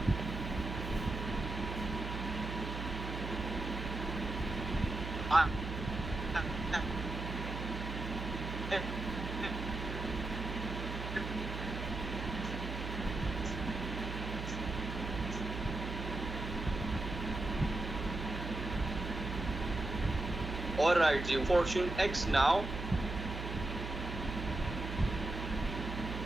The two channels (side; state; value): right; noise; hum, 5 dB below the sound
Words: ऑलराइट जी, फॉर्च्यून एक्स नाउ